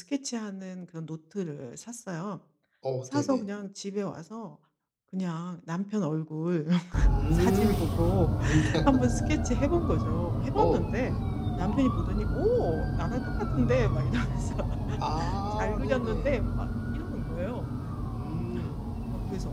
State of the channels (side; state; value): both; identical; correlation 1.00